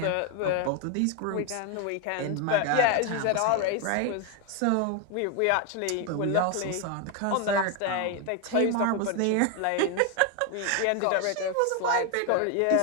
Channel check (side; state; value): both; different; correlation 0.01